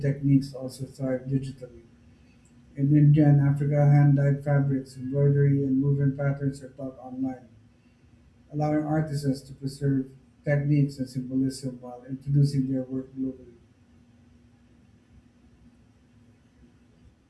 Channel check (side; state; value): both; identical; correlation 1.00